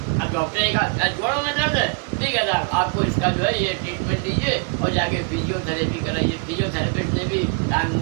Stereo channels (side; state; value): left; quieter; 32.5 dB